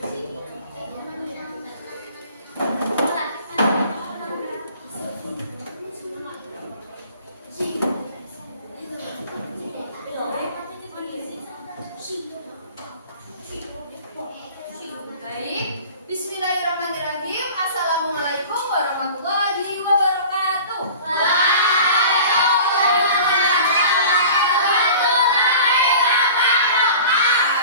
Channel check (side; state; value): both; inverted; correlation -0.42